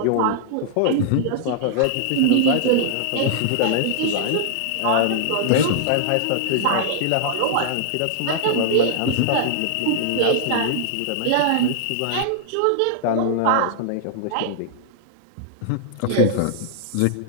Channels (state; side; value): different; both; correlation -0.01